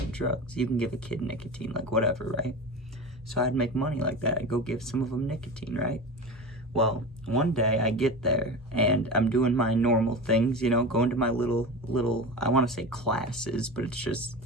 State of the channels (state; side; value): normal; both; correlation 0.28